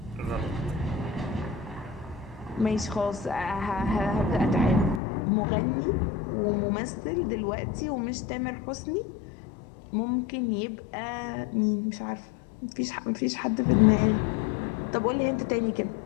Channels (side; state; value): right; drops out; at 5.0 s